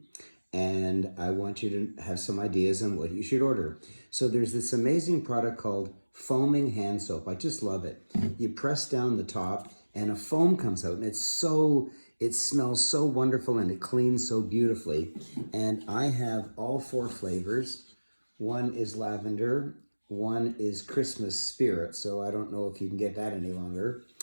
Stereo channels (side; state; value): both; inverted; correlation -1.00